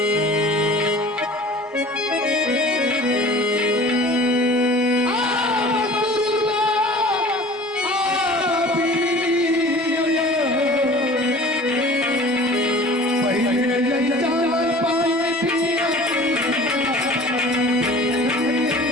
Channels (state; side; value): normal; both; correlation 0.44